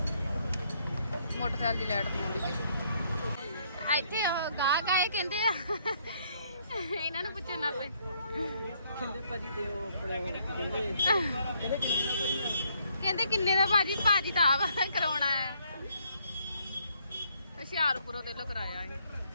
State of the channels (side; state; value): both; inverted; correlation -0.69